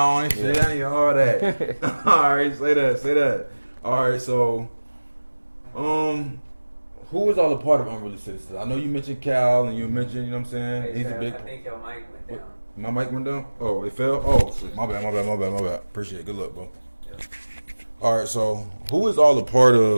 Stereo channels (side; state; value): both; inverted; correlation -1.00